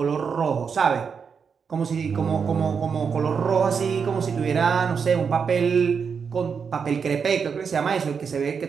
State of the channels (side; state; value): left; quieter; 6.2 dB